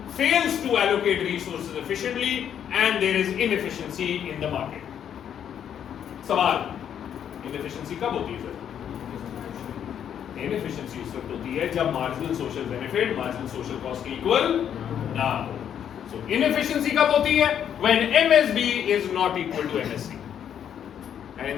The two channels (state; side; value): quieter; right; 9.1 dB